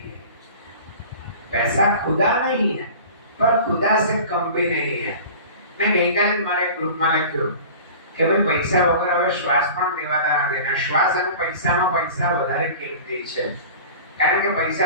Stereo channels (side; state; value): both; inverted; correlation -0.39